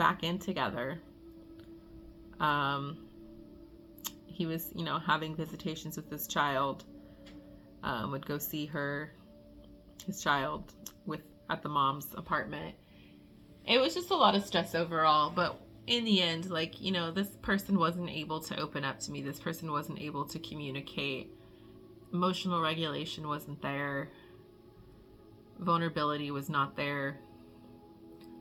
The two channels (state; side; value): identical; both; correlation 1.00